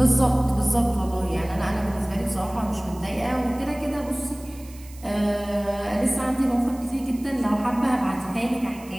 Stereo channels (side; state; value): right; noise; hiss, 22 dB below the sound